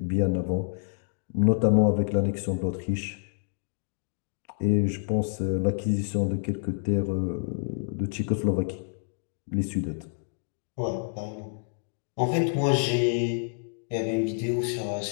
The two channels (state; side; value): silent; right; digital silence